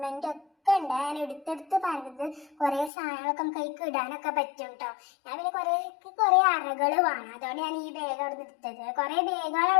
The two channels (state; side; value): drops out; right; at 2.9 s